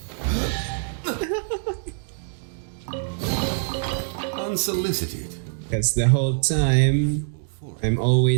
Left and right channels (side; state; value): left; silent; digital silence